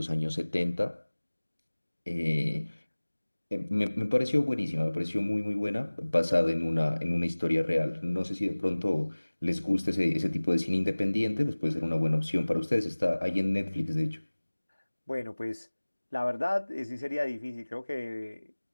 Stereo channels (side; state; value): both; inverted; correlation -1.00